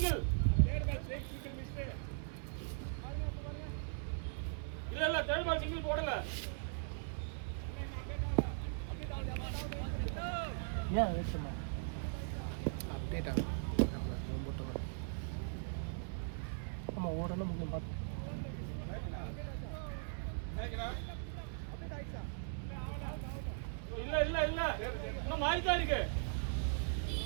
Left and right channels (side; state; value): left; silent; 51 dB below the other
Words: ஏன் வெயிட் பண்ண அப்டேட் ஆகும் ஆமாம் ஓடணும் முக்கியம் பார்த்து